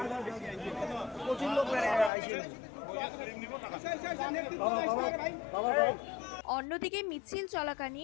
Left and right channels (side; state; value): right; drops out; at 2.1 s